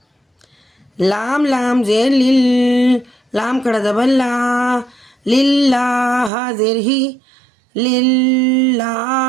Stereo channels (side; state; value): left; drops out; at 6.3 s